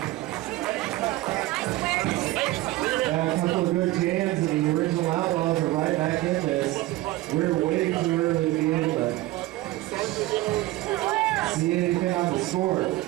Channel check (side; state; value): left; quieter; 17.7 dB